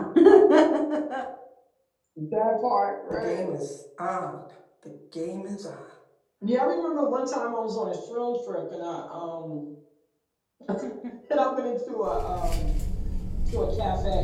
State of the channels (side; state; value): both; identical; correlation 1.00